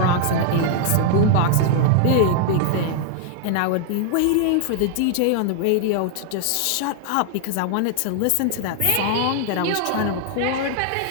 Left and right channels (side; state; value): both; different; correlation 0.00